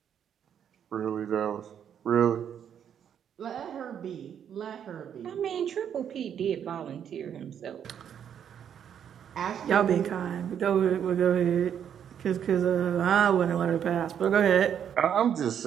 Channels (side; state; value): left; quieter; 8.7 dB